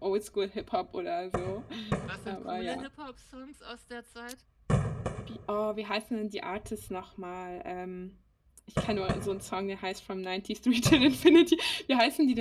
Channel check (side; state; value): both; identical; correlation 1.00